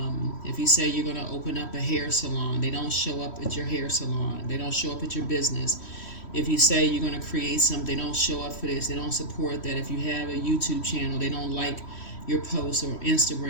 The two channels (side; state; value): right; late; 3.1 ms